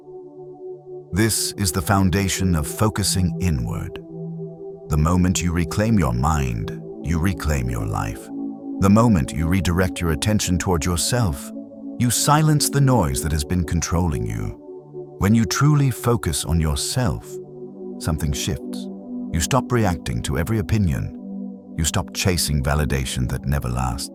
This is the foundation of focusing inward. The moment you reclaim your mind, you reclaim your life. The moment you redirect your attention toward yourself, you silence the noise that has been controlling you. When you truly focus on yourself, something shifts. You stop reacting to every opinion. You stop chasing validation that never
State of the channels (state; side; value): identical; both; correlation 1.00